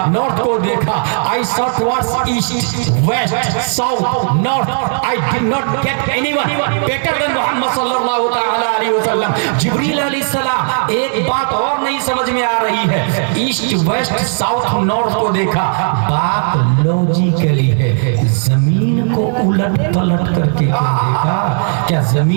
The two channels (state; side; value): silent; left; digital silence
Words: नॉर्थ को देखा। I saw towards east, west, south, north. I did not get anyone better than Muhammad सल्लल्लाहु तआला अलैहि वसल्लम। जिब्रील अलैहिस्सलाम, एक बात और नहीं समझ में आ रही है। ईस्ट, वेस्ट, साउथ, नॉर्थ को देखा, बात लॉजिकली है। जमीन को उलट पलट करके क्या देखा? क्या